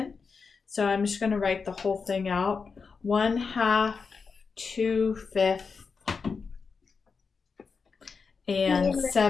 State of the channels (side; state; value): right; quieter; 5.1 dB